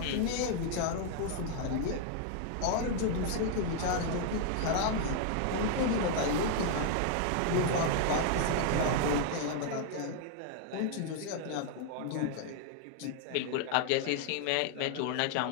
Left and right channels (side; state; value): both; different; correlation 0.00